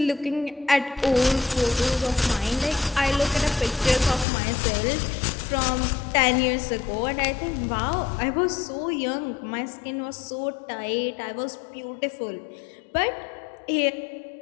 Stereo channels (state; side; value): drops out; right; at 4.2 s